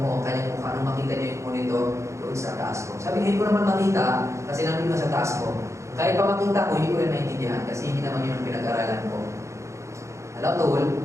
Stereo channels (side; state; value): left; late; 0.14 ms